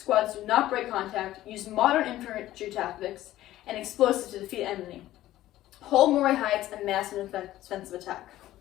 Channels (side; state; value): right; quieter; 14.6 dB